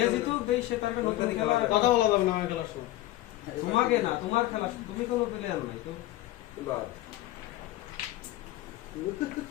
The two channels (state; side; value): quieter; right; 16.1 dB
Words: জিতু দেই সে তার নতুন খেলা কথা বলা যাবে না আমার খেলার সময় তোমাকে না তোমার খেলা তুমি কোনো প্লেয়ার নাই তো বাদ